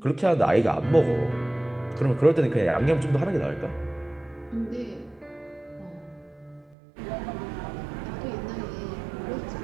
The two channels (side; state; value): left; drops out; at 6.8 s